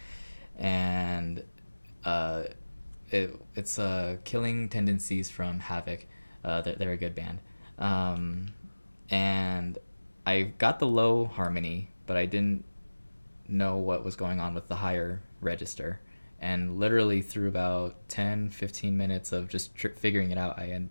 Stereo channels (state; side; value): inverted; both; correlation -1.00